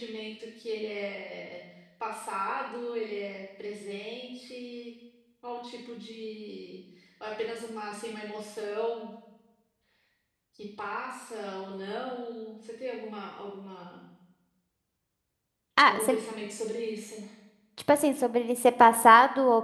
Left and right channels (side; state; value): both; identical; correlation 1.00